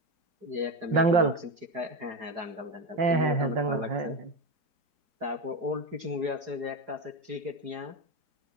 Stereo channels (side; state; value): left; late; 4.8 ms